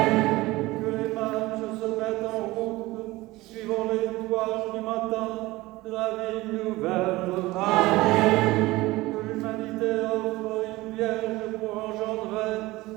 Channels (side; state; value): left; quieter; 19.7 dB